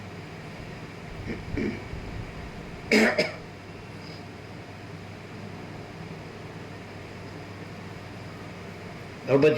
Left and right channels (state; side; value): identical; both; correlation 1.00